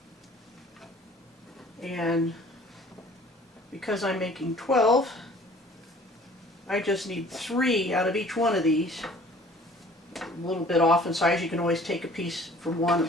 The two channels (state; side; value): normal; both; correlation 0.51